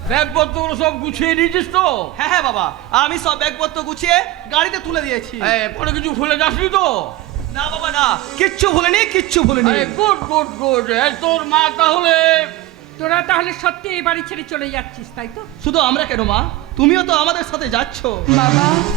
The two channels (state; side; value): quieter; left; 16.0 dB